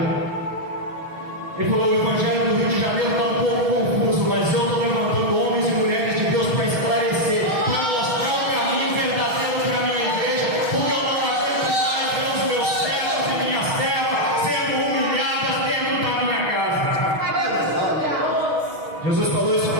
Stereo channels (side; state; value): left; late; 6.3 ms